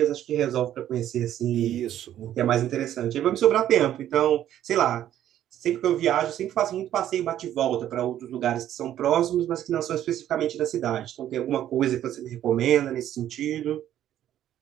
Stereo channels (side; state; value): left; quieter; 11.6 dB